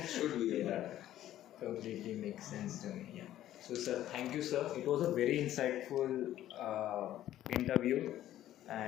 should be avoided. Completely makes sense to me. Yeah. So, sir, thank you, sir. It was a very insightful interview,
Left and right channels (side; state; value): right; quieter; 12.9 dB